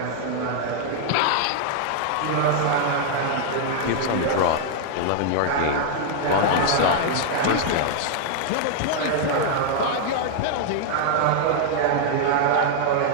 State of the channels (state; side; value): different; both; correlation -0.01